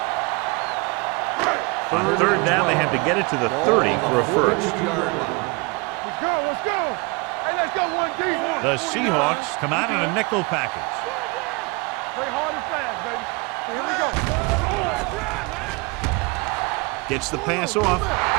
On third down, they have to get it to the 30 for a first. Let's go. Hey, let's go, 1D. The Seahawks come out in a nickel package. Play hard and fast, baby. Here we go. Let's run, man. Gets the pass off.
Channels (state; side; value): quieter; left; 28.3 dB